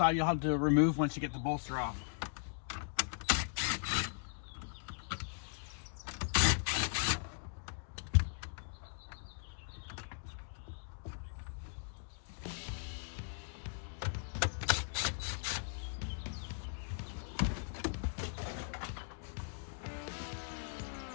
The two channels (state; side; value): silent; right; digital silence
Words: you'll have to remove once you get the bolster off.